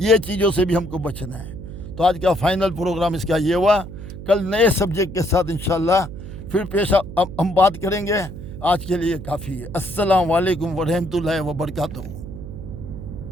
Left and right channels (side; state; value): right; noise; hum, 11 dB below the sound